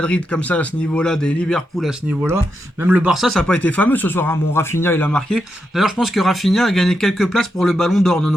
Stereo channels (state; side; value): normal; both; correlation 0.85